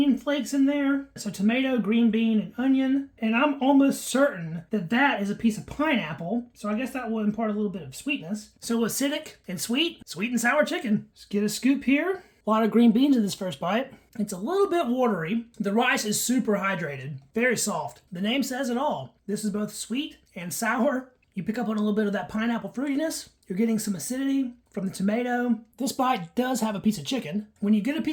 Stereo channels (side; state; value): both; identical; correlation 1.00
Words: flakes in there. So tomato, green bean, and onion. And I'm almost certain that that is a piece of pineapple. So I guess that will impart a little bit of sweetness. So acidic and sweet and sour chicken. Let's get a scoop here. A lot of green beans in this first bite. It's a little bit watery. The rice is super hydrated, very soft. The name says it all. This is both sweet and sour. You pick up on a little bit of that pineapple fruitiness. You're getting some acidity from the tomato. This bite does have a piece of chicken. When you get a